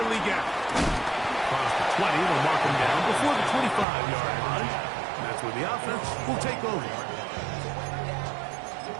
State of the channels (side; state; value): left; drops out; at 3.9 s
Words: Leggett. Across the 20, they'll mark him down before the 25-yard line. That's where the offense will take over.